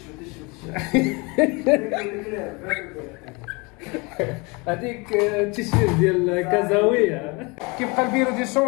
هذيك التيشيرت ديال كازاويه. كيبقى البيرو دي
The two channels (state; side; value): quieter; right; 27.8 dB